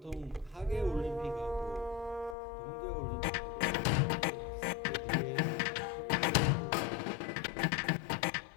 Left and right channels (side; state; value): right; drops out; at 2.4 s